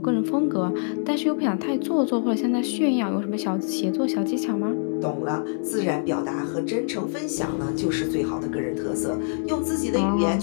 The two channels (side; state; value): right; silent; digital silence